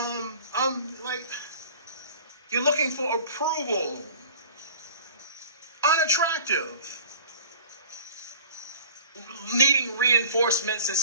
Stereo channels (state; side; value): inverted; both; correlation -0.44